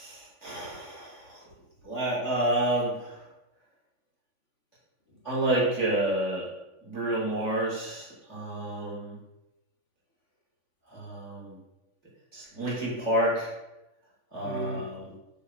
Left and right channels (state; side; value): late; right; 3.5 ms